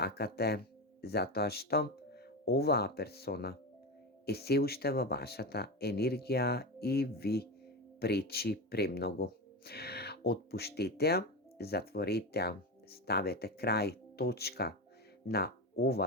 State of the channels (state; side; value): normal; both; correlation 0.18